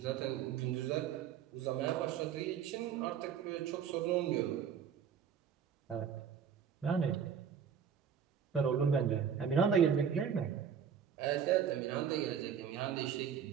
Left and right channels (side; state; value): left; quieter; 7.8 dB